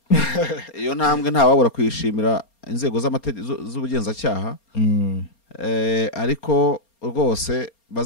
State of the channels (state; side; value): late; right; 4.3 ms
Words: iyo ntambwe nta wabura kwishimira inzego z'ubugenzacyaha ariko rwose